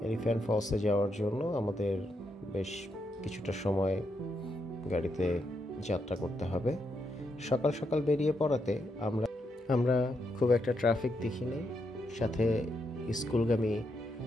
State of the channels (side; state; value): both; normal; correlation 0.81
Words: এলিফ্যান্ট ফলসে যাওয়ার জন্য আমাদের বেশ কিছুটা সময় গাড়িতে যাত্রা করতে হবে। সকাল সকাল বেরিয়ে পড়াতে আমরা খুব একটা ট্রাফিক দেখিনি। সাথে স্কুলগামী